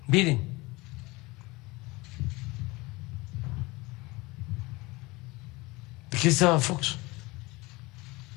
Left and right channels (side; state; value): right; quieter; 23.0 dB